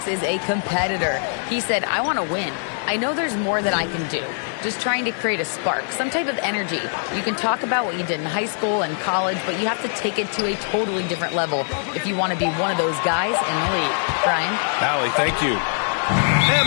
is a competitor. He said, I want to win. I know there's more that I can do. Just trying to create a spark, some type of energy. You can talk about what you did in high school and college, but you have to take it to a totally different level if you want to be one of those guys in the league. Brian? Allie, thank you.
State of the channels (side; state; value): right; silent; 64 dB below the other